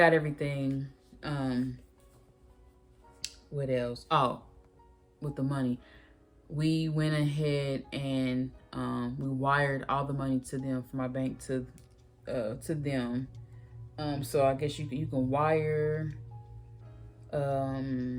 everything. What else? Oh, with the money, we went ahead and we wired all the money to them from my bank to them. So I guess you can wire,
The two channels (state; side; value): identical; both; correlation 1.00